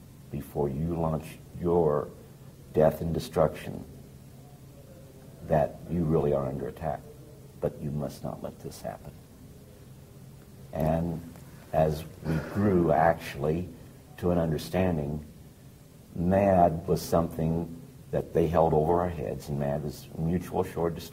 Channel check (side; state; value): both; identical; correlation 1.00